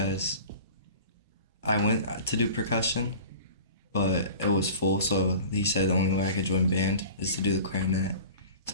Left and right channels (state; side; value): inverted; both; correlation -0.40